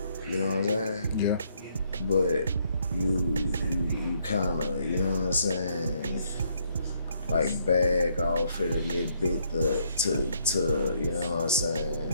you know what I'm saying? Yeah. But you kinda, you know what I'm saying, like bag off it a little bit to you know what I'm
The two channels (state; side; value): inverted; both; correlation -0.71